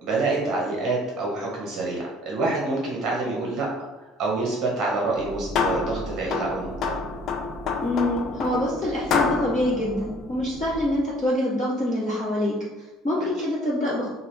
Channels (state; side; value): normal; both; correlation 0.55